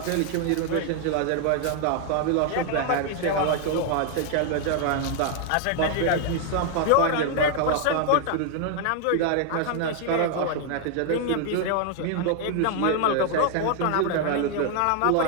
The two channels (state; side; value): different; both; correlation 0.00